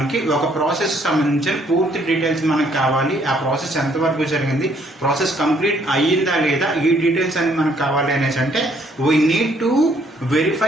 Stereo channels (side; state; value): both; normal; correlation 0.66